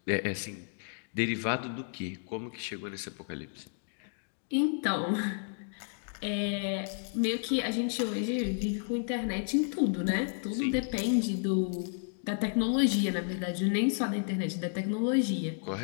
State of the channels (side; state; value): right; silent; digital silence